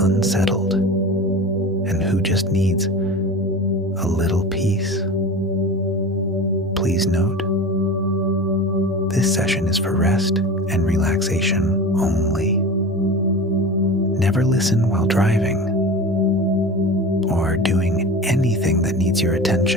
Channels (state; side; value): normal; both; correlation 0.32